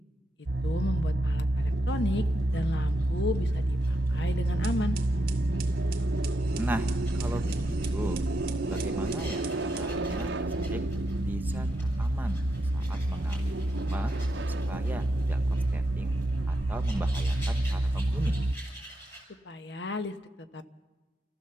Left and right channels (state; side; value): normal; both; correlation 0.84